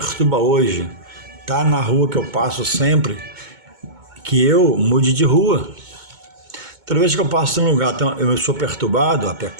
hoje está na rua que eu passo sempre, que eu mude de rua. Toda vez que eu passo em um lugar, eu sou perturbado a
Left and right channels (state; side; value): late; left; 2.2 ms